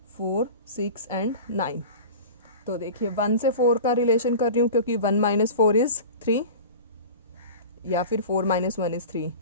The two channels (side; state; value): both; inverted; correlation -0.35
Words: 4 6 एंड 9. तो देखिए 1 से 4 का रिलेशन कर रही हूँ क्योंकि 1 माइनस 4 इज़ 3, या फिर 4 माइनस 1 इज़ 3,